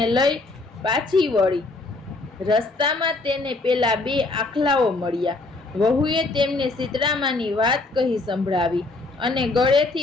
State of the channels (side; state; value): right; quieter; 3.2 dB